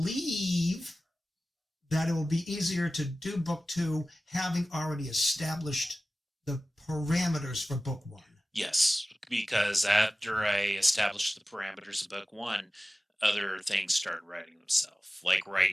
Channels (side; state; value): both; normal; correlation 0.96